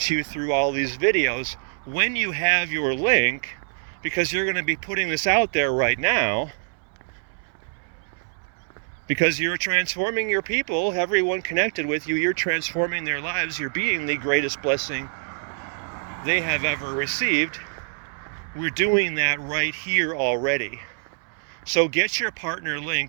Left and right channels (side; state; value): left; silent; 62 dB below the other